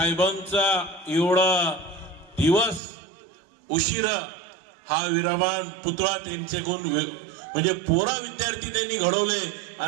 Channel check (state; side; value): drops out; left; at 2.8 s